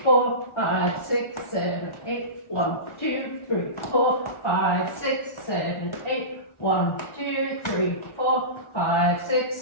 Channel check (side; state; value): right; late; 1.4 ms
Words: 4, 5, 6, 7, 8. 1, 2, 3, 4, 5, 6, 7, 8. 1, 2, 3, 4, 5, 6,